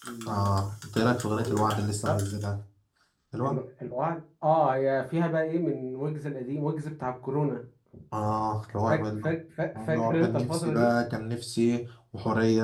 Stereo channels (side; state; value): both; identical; correlation 1.00